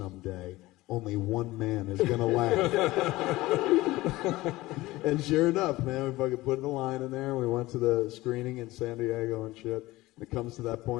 only one man is going to laugh. And sure enough, man, we fucking put the line in there, and we went to the screening in San Diego and shit. And it comes to that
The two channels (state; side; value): quieter; right; 18.7 dB